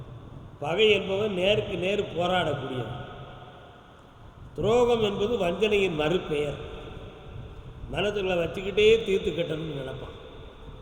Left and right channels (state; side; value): identical; both; correlation 1.00